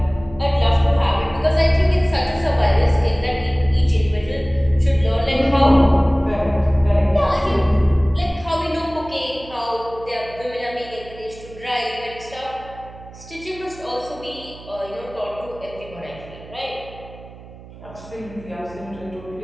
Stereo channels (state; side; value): noise; right; hum, 18 dB below the sound